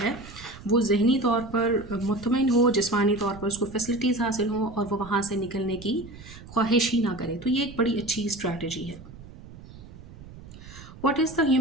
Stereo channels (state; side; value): noise; right; rumble, 17 dB below the sound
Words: ہے وہ ذہنی طور پر مطمئن ہو، جسمانی طور پر اس کو فیسلٹیز حاصل ہوں اور وہ وہاں سے نکلنے کی خواہش ہی نہ کرے. تو یہ ایک بڑی اچھی اسٹریٹجی ہے. What is the